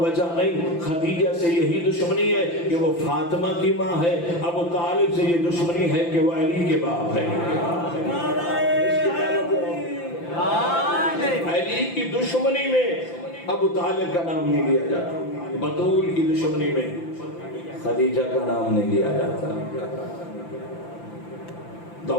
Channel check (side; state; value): right; late; 5.9 ms